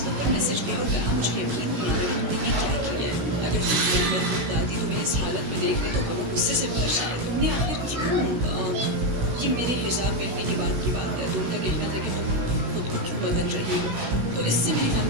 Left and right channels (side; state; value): left; late; 16 ms